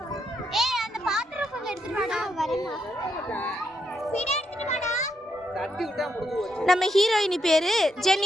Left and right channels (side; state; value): both; normal; correlation 0.79